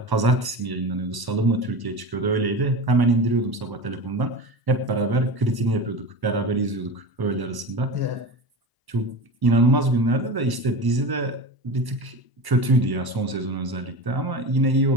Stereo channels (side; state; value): left; late; 1.0 ms